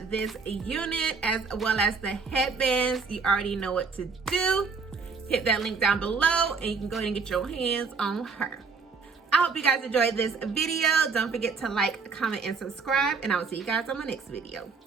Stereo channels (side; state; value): left; quieter; 4.9 dB